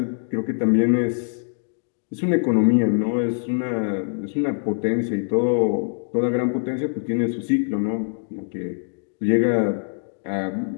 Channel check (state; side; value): silent; right; digital silence